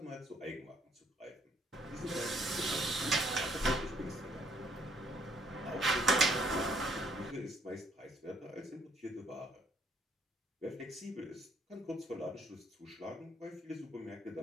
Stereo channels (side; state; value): both; normal; correlation 0.65